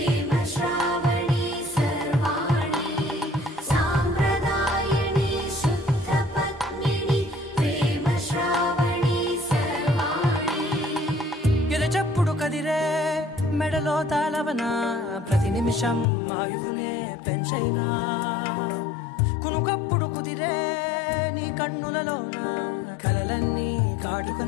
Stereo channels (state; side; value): drops out; right; at 16.1 s